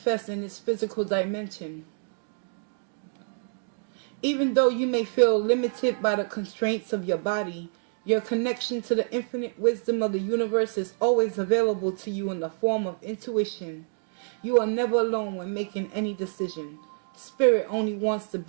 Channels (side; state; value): left; silent; 60 dB below the other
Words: in this physical dimension. Even though you may feel limited by the constraints of your body, your connection to the infinite wisdom of the universe is always available to you in the form of intuition. You are never alone when making any decision. Spirit only wants the